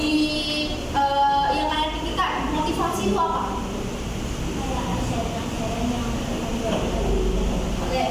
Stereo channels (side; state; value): both; identical; correlation 1.00